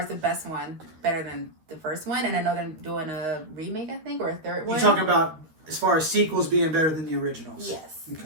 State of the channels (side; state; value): left; late; 13 ms